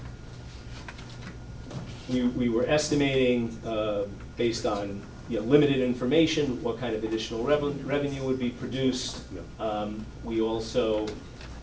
We were estimating, based on limited information, what kind of additional revenue would be produced. We also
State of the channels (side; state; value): both; identical; correlation 1.00